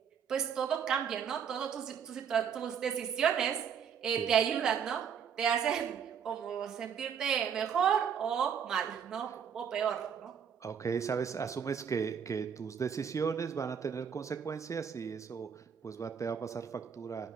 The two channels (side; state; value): left; quieter; 7.5 dB